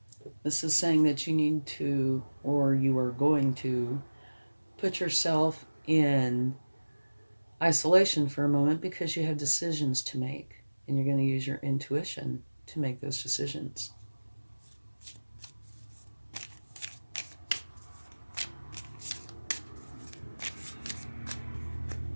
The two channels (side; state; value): both; inverted; correlation -1.00